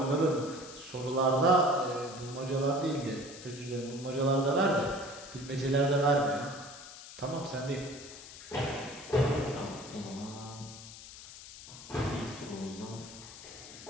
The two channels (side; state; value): left; noise; hiss, 15 dB below the sound